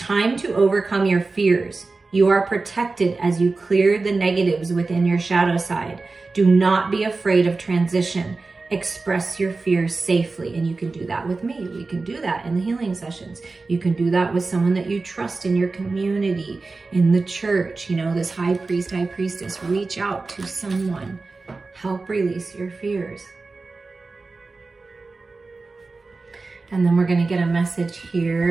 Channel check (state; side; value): quieter; left; 3.8 dB